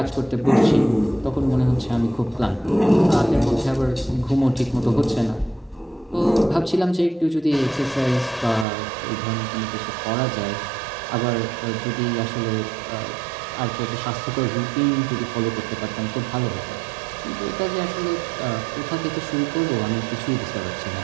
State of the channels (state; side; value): drops out; left; at 8.7 s